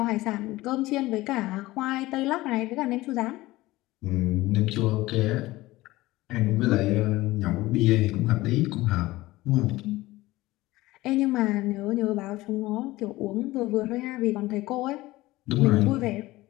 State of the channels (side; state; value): right; quieter; 18.5 dB